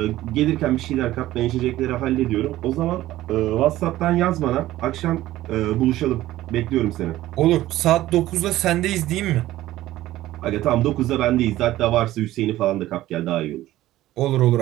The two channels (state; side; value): quieter; left; 15.3 dB